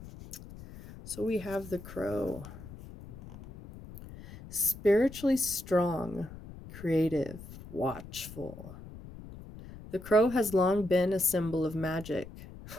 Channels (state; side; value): noise; left; rumble, 15 dB below the sound